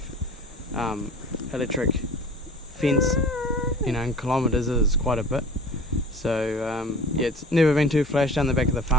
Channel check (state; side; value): normal; both; correlation 0.40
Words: electric fence, in kilometres is quite a bit. So yeah, it's never been too flash down the back of the